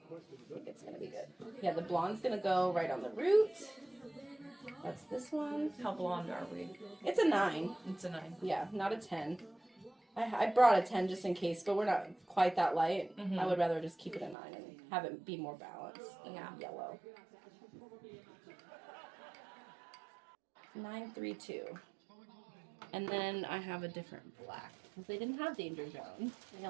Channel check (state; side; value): drops out; left; at 14.4 s